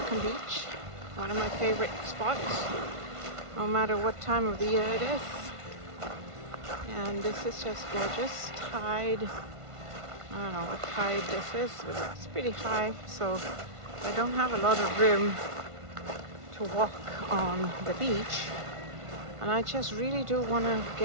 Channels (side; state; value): left; late; 1.5 ms